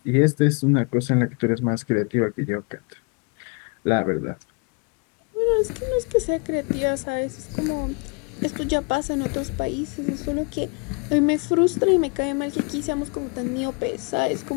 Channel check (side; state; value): right; quieter; 32.3 dB